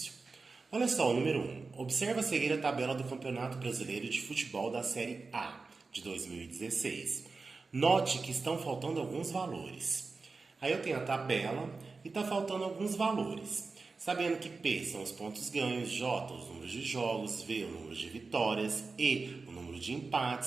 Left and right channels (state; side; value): quieter; left; 4.1 dB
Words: Olha só, o número 1. Observa a seguir a tabela do Campeonato Brasileiro de Futebol da Série A de 2016. Note que estão faltando alguns valores. Aí eu tenho a tabela e está faltando alguns valores. Sabendo que P são os pontos ganhos, J os números de jogos, V o número de vitórias, E o número de